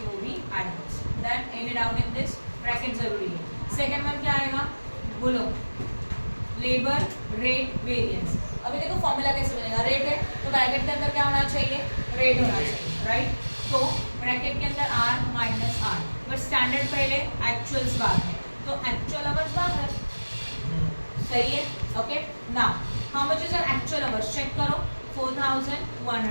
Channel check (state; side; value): inverted; both; correlation -1.00